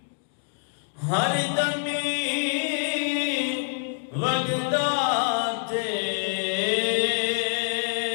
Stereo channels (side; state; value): right; silent; digital silence